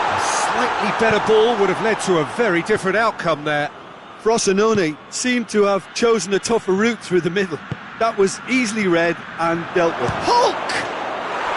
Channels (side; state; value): both; identical; correlation 1.00